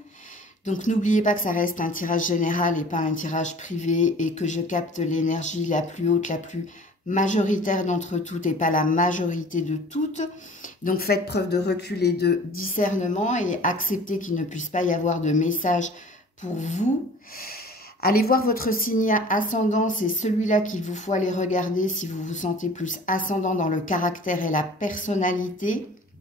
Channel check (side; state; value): both; normal; correlation 0.46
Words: Donc n'oubliez pas que ça reste un tirage général et pas un tirage privé et que je capte l'énergie la plus haute, la plus majoritaire d'entre toutes et pas la majorité de toutes. Donc faites preuve de recul et de discernement et acceptez qu'il ne puisse pas y avoir de message pour vous. Allez voir votre signe ascendant, c'est celui-là qu'il vous faut aller regarder si vous vous sentez plus ascendant dans le caractère et la personnalité.